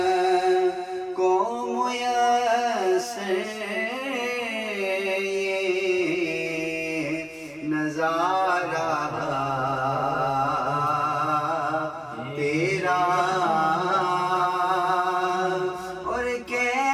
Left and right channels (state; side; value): identical; both; correlation 1.00